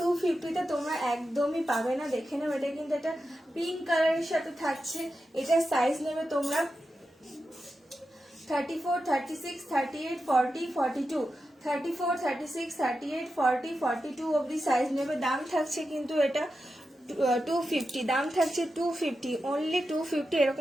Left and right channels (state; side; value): normal; both; correlation 0.90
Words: তোমরা একদমই পাবে না। দেখে নাও এটা কিন্তু একটা পিঙ্ক কালারের সাথে থাকছে, এটা সাইজ নেবে তোমরা 34, 36, 38, 40, 42, 34, 36, 38, 40, 42 অবধি সাইজ নেবে। দাম থাকছে কিন্তু এটা 250, দাম থাকছে 250, অনলি 250।